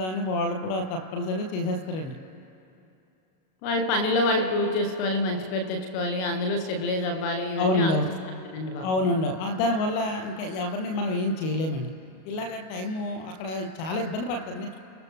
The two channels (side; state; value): right; late; 38 ms